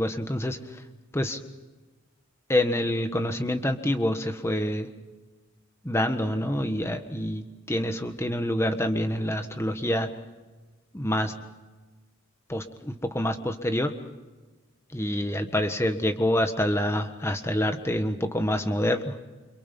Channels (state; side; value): normal; both; correlation 0.77